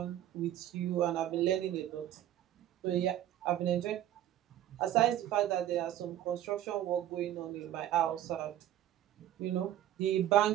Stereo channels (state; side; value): quieter; left; 12.2 dB